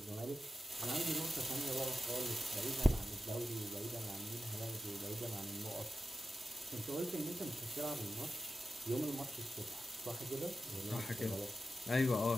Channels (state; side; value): normal; both; correlation 0.92